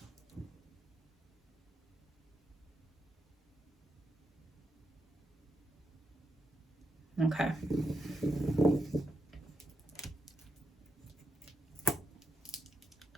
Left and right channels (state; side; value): normal; both; correlation 0.81